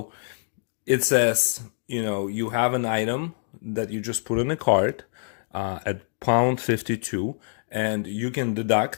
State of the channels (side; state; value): right; silent; digital silence